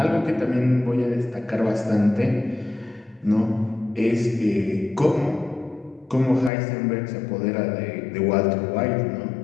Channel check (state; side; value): drops out; right; at 6.5 s